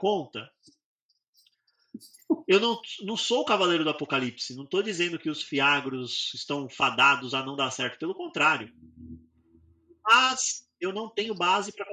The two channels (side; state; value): both; identical; correlation 1.00